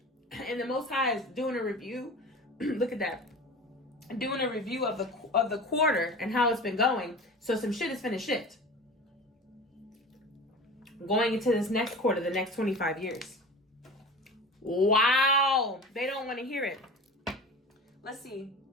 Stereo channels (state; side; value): normal; both; correlation 0.35